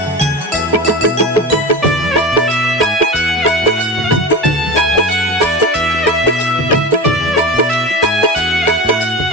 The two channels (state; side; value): normal; both; correlation 0.29